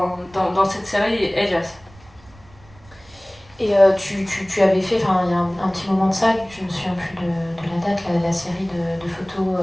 cette série Elias. Et tu avais fait, il y a un petit moment de ça, je ne me souviens plus de la date, la série de photos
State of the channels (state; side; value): noise; right; rumble, 25 dB below the sound